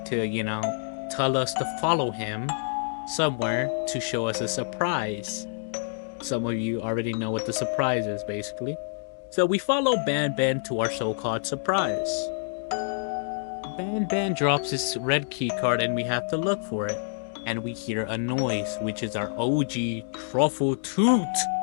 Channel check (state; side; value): silent; right; digital silence